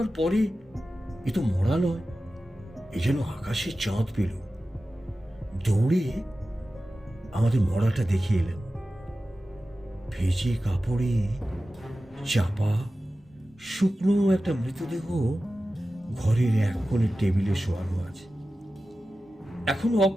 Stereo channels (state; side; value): normal; both; correlation 0.94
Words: পরে এ তো মরা নয়, এ যেন আকাশে চাঁদ পেল। দৌড়ে আমাদের মরাটা দেখে এলাম। ভেজে কাপড়ে চাপা শুকনো একটা মৃতদেহ ঘরের এক কোণে টেবিলে শোয়ানো আছে, এখনো